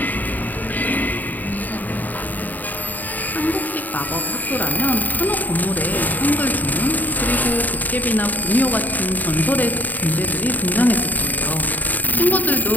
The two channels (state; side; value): late; right; 0.084 ms